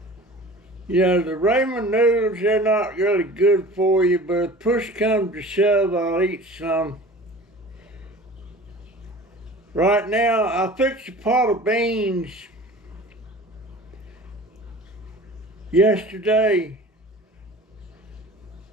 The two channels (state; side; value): normal; both; correlation 0.41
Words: You know, the ramen noodles, they're not really good for you, but if push comes to shove, I'll eat some. Right now, I fixed a pot of beans yesterday